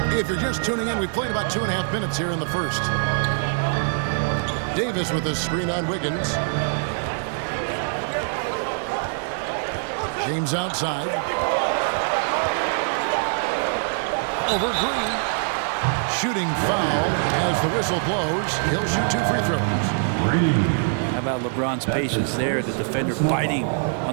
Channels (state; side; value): silent; left; digital silence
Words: If you're just tuning in, we've played about 2.5 minutes here in the first. Davis with a screen on Wiggins. James outside. Over Green. Shooting foul as the whistle blows. He'll shoot 2 free throws. How about LeBron's patience there? The defender biting